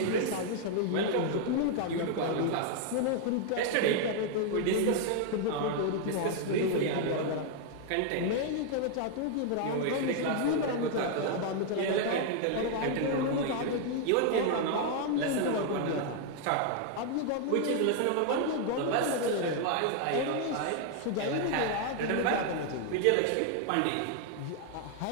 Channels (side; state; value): both; different; correlation 0.00